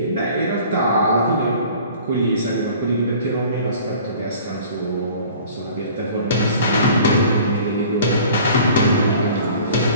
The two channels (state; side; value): inverted; both; correlation -0.47